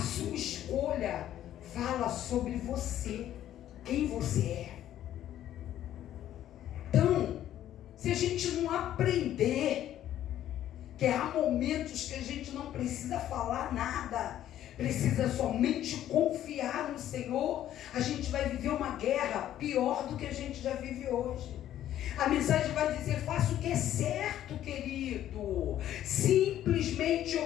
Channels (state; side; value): quieter; right; 12.0 dB